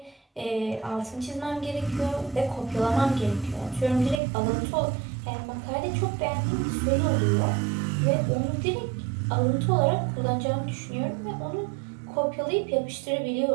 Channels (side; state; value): left; drops out; at 4.2 s